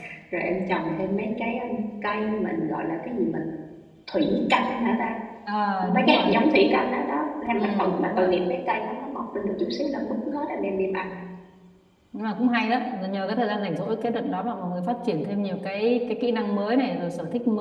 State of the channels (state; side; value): identical; both; correlation 1.00